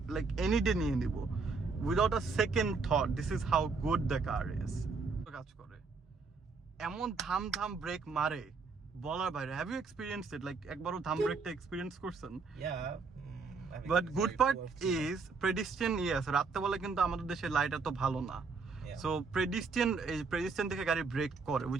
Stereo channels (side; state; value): left; quieter; 4.6 dB